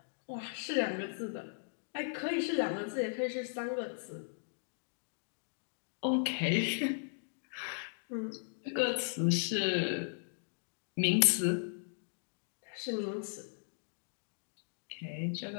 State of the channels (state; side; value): silent; right; digital silence